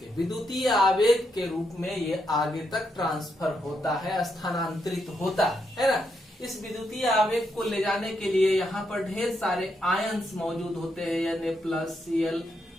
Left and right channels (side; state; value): both; normal; correlation 0.80